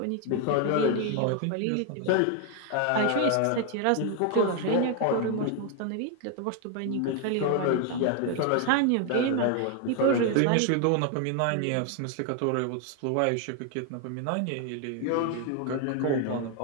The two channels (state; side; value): different; both; correlation 0.01